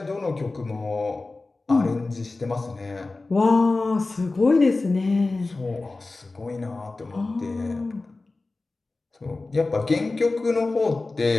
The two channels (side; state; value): right; quieter; 3.4 dB